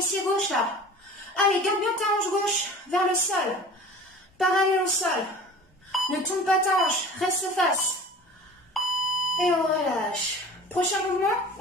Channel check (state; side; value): normal; both; correlation 0.41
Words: gauche là. Allez, garde bien ta hanche gauche vers le sol. Parallèle au sol. Ne tourne pas ta hanche, reste face. Et on relâche. Prochain mouvement,